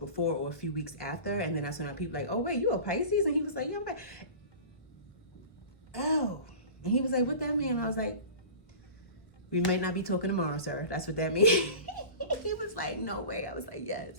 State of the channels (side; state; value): right; late; 1.3 ms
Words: before or a few weeks after. And then that's when people like, oh wait, you a Pisces? And he was like, yeah, I'm like, oh. And he was like, what that mean? I was like, we might not be talking tomorrow, sir. That's what that means. He was like, no way. I was like, yes.